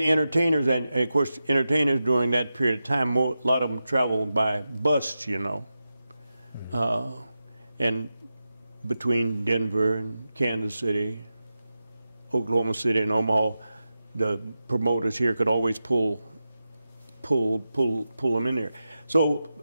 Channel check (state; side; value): inverted; both; correlation -0.91